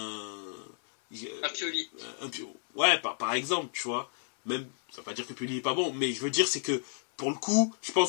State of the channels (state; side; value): silent; right; 57 dB below the other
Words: Pioli. Ouais, par exemple, tu vois. Même, ça ne veut pas dire que Pioli n'est pas bon, mais je veux dire, c'est que, pour le coup, je